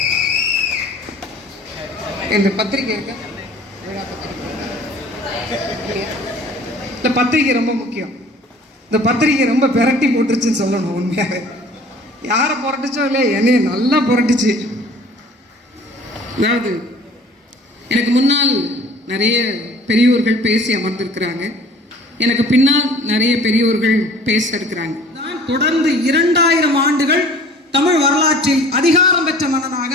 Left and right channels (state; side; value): normal; both; correlation 0.49